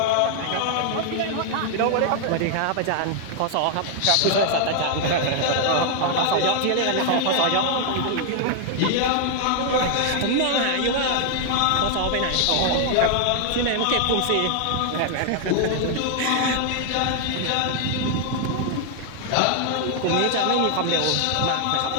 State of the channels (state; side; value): different; both; correlation 0.00